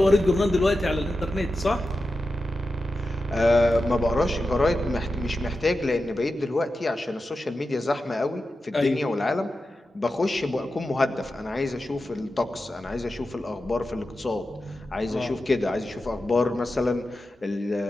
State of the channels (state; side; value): normal; both; correlation 0.91